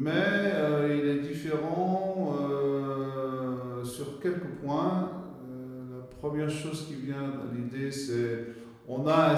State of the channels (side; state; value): both; identical; correlation 1.00